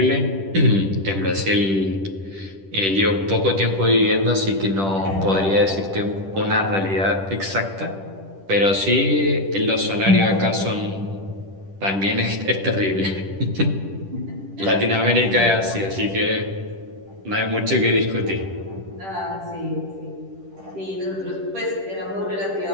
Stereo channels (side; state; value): left; late; 10 ms